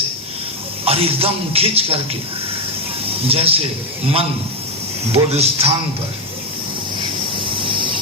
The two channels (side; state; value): both; normal; correlation 0.05